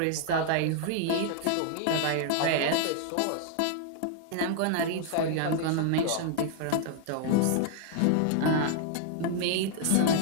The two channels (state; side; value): different; both; correlation 0.00